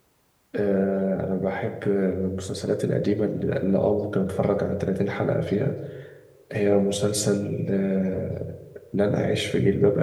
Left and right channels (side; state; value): both; identical; correlation 1.00